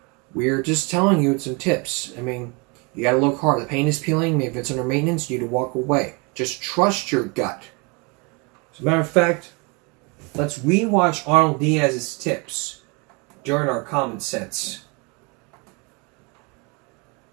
We're just telling you some tips. I mean, you got to look hard. The paint is peeling. Maybe if it's under maintenance, you need to walk away. Just trust your gut. As a matter of fact, let's rewatch Arnold Diaz's tips during our common sense.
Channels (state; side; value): quieter; left; 30.4 dB